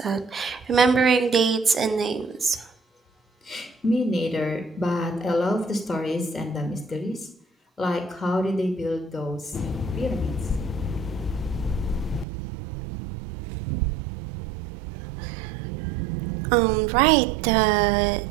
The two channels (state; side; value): drops out; left; at 12.2 s